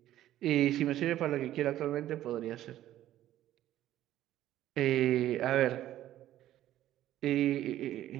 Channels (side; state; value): left; quieter; 13.2 dB